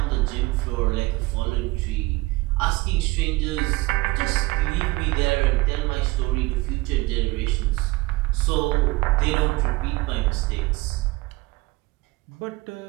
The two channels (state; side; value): quieter; left; 21.5 dB